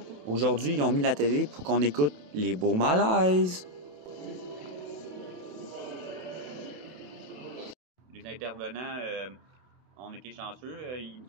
Aujourd'hui, ils ont mis la télé pour qu'on écoute les beaux malaises. Les intervenants, on était chanceux, ils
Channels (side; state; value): left; late; 27 ms